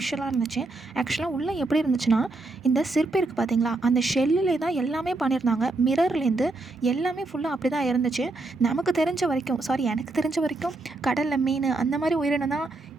இருந்துச்சு. ஆக்சுவலாக உள்ளே எப்படி இருந்துச்சுன்னா, இந்த சிற்பி இருக்குது பார்த்தீங்களா, அந்த ஷெல்லிலே தான் எல்லாமே பண்ணியிருந்தாங்க. மிரர்லேருந்து எல்லாமே ஃபுல்லாக அப்படி தான் இருந்துச்சு. எனக்கு தெரிஞ்ச வரைக்கும் கடலில் மீன் அந்த மாதிரி உயிரினம் தான்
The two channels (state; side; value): quieter; left; 3.1 dB